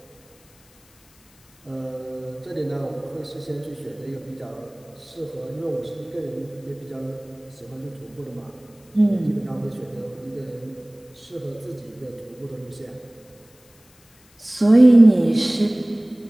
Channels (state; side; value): noise; left; hiss, 29 dB below the sound